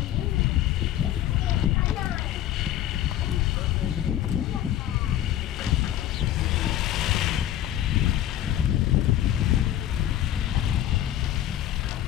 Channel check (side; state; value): right; quieter; 12.2 dB